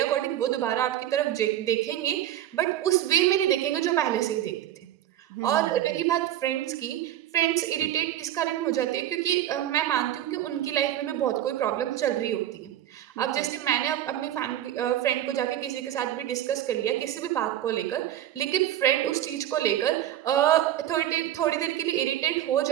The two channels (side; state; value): left; quieter; 12.1 dB